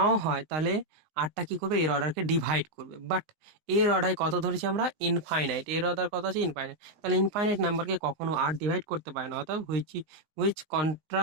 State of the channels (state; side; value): late; left; 19 ms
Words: হয়, তাহলে আরটা কি করবে, এর অর্ডারকে ডিভাইড করবে। বাট এর অর্ডার কত ধরেছি আমরা, ইনফাইনাইট, এর অর্ডার কত আছে, ইনফাইনাইট। তাহলে ইনফাইনাইট নাম্বারকে কখনো আর ডিভাইড করতে পারে না, অর্থাৎ which